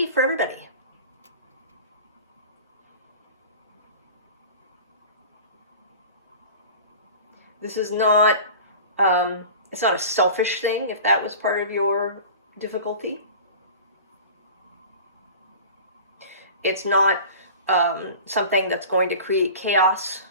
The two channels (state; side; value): inverted; both; correlation -0.38